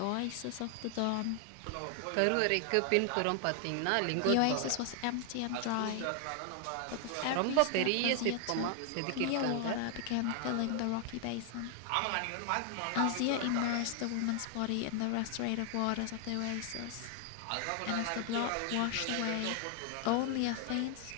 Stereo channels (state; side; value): different; both; correlation 0.00